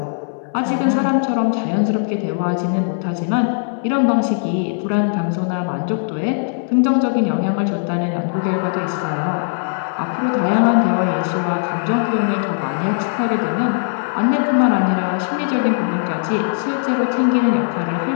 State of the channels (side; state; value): right; silent; digital silence